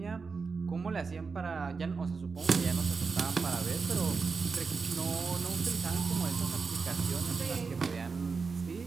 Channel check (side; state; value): left; quieter; 4.9 dB